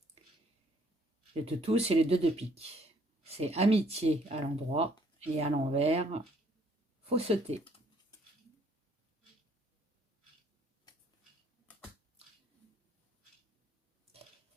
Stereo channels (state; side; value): normal; both; correlation 0.64